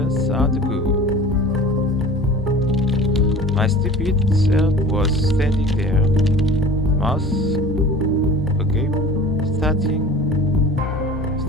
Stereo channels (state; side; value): normal; both; correlation 0.40